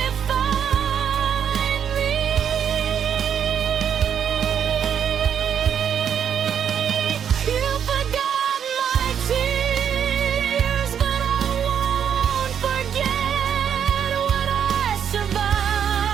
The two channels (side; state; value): left; quieter; 8.4 dB